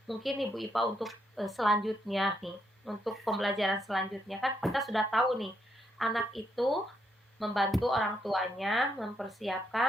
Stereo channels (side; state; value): both; normal; correlation 0.77